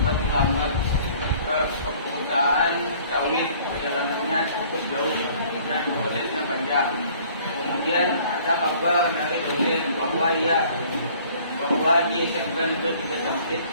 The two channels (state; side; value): inverted; both; correlation -0.54